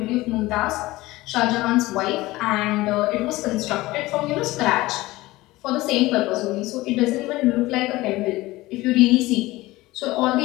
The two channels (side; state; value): right; quieter; 18.9 dB